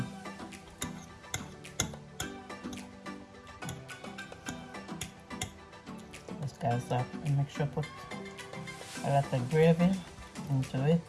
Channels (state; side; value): identical; both; correlation 1.00